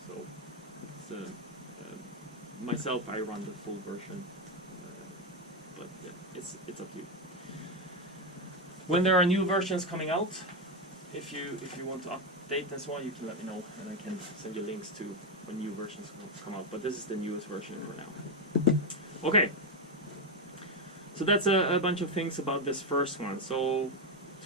So it's, myself, I run the full version, but yeah, it's up to you. When there are new versions coming out, if you want to update and so on, you can let me know, and I can send you links to when new versions come out. But this is the newest version for now. Okay. So that's a bunch of things about this first one. So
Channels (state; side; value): normal; both; correlation 0.08